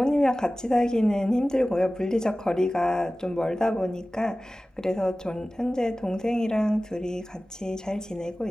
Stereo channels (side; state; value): both; normal; correlation 0.97